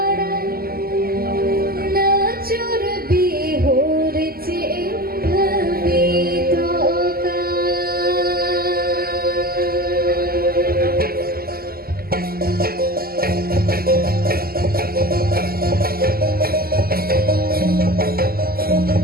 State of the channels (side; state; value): left; late; 0.43 ms